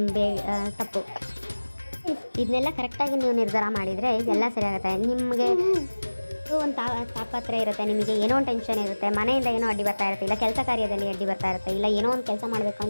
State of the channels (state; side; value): inverted; both; correlation -1.00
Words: ತಪ್ಪು, ಇದನ್ನೆಲ್ಲ ಕರೆಕ್ಟಾಗಿ ನೀವು ನಿರ್ಧಾರ ಮಾಡಿದರೆ ಎಲ್ಲ ಸರಿ ಆಗುತ್ತೆ. ನಿಮಗೆ ಒಂದು ತಾಪತ್ರೆ ಇರುತ್ತೆ, ನಿಮಗೆ ಏನೋ ಒಂದು ಟೆನ್ಷನ್ ಇರುತ್ತೆ, ಮನೆಯಿಂದ ಏನೋ ಅಡ್ಡಿ ಬರ್ತಾ ಇರುತ್ತೆ, ಇಲ್ಲ ಕೆಲಸ ಕಾರ್ಯದಲ್ಲಿ ಅಡ್ಡಿ ಬರ್ತಾ ಇರುತ್ತೆ, ಇಲ್ಲ ಏನೋ ಒಂದು ಕೆಲಸ ಮಾಡಬೇಕು